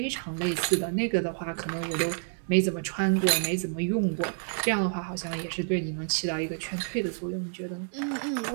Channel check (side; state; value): left; silent; 59 dB below the other